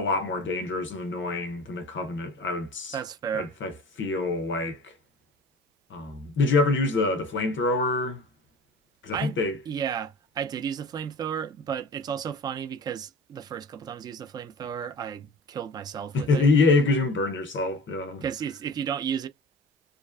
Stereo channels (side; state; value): both; normal; correlation 0.40